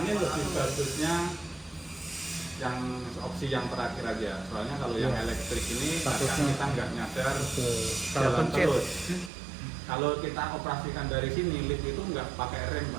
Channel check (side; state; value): left; drops out; at 9.3 s